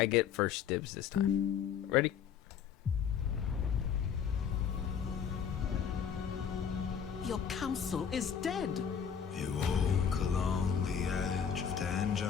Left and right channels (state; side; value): quieter; right; 7.7 dB